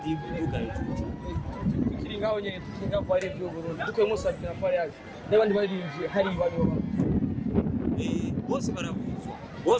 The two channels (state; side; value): identical; both; correlation 1.00